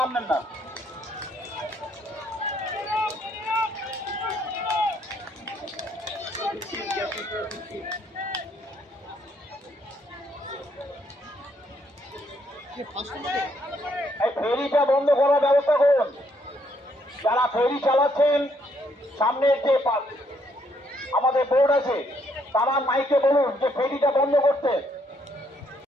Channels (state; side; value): normal; both; correlation 0.71